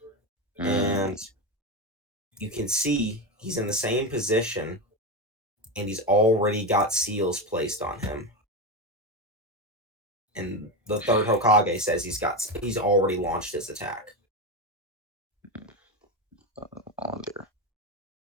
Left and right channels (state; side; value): normal; both; correlation 0.16